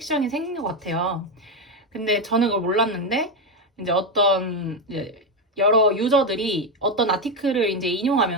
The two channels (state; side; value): normal; both; correlation 0.10